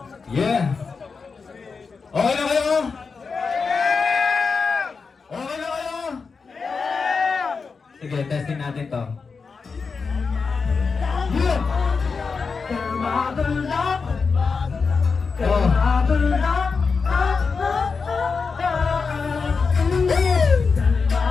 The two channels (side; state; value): right; quieter; 5.0 dB